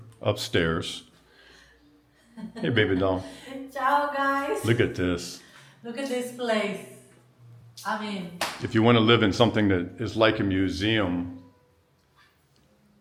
upstairs, hey, baby doll. Ciao, guys. Look at this. Look at this place. If you want to live in something that is like a museum,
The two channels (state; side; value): identical; both; correlation 1.00